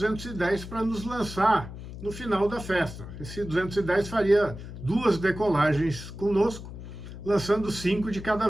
para nos lançar no final da festa. Esse 210 faria 2 decolagens conosco, lançando 5 de cada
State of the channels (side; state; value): left; noise; hum, 11 dB below the sound